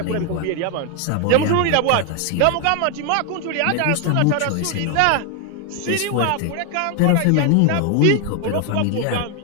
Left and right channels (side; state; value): both; different; correlation 0.01